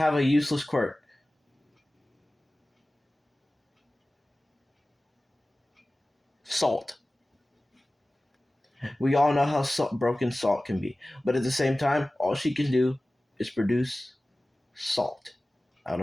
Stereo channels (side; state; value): both; normal; correlation 0.97